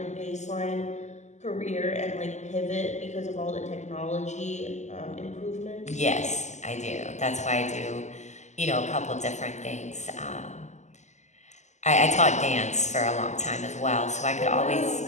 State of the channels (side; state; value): right; late; 0.34 ms